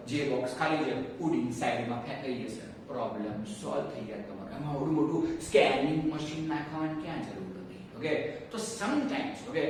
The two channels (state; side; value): identical; both; correlation 1.00